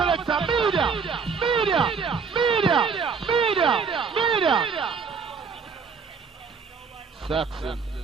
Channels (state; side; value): quieter; left; 5.5 dB